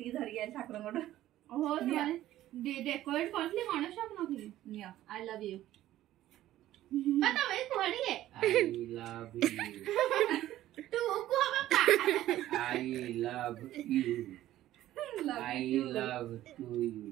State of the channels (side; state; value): left; quieter; 14.0 dB